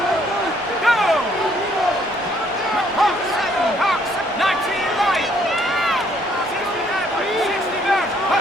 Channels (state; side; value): normal; both; correlation 0.65